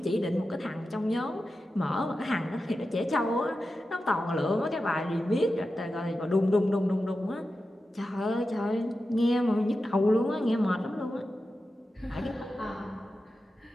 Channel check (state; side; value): normal; both; correlation 0.92